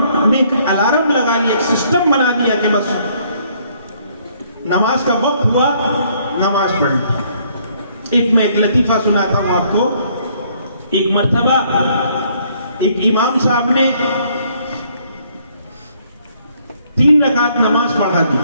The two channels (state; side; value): inverted; both; correlation -0.66